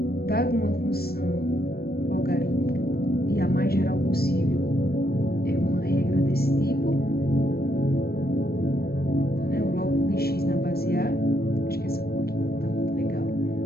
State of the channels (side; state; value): right; late; 0.45 ms